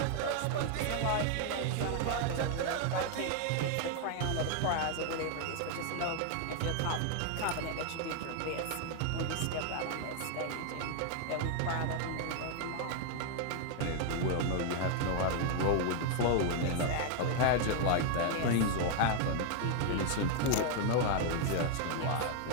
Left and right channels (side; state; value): both; different; correlation 0.00